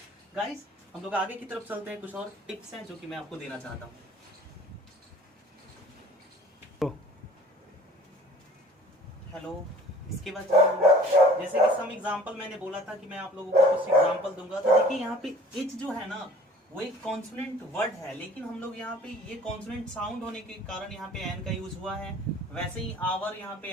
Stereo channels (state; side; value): normal; both; correlation 0.48